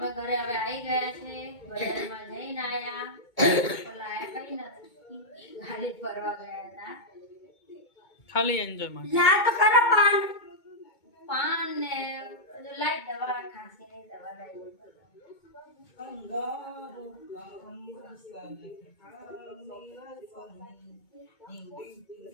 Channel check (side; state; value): right; late; 2.2 ms